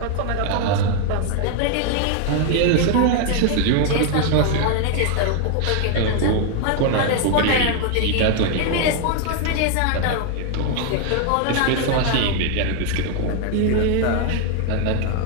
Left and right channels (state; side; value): different; both; correlation 0.00